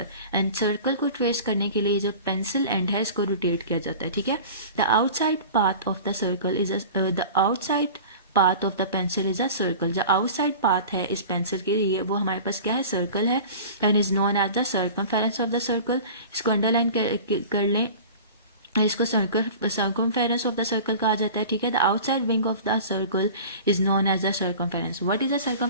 And circle को ट्रेस करने के लिए जो पेंसिल एंड है इसको रोटेट किया जाता है. ठीक है, the outside path of the circle is the outside path of the pencil is a circle. जो आउटसाइड पाथ है इस पेंसिल के लिए वो हमारे पास क्या है? सर्कल है. And is known as the circumference of the circle. इसको अंडरलाइन कर लें, इसको सर्कमफेरेंस ऑफ द सर्कल कहा जाता है. ठीक है, the outside wing of the circle is known as the circumference. What is the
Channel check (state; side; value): inverted; both; correlation -0.38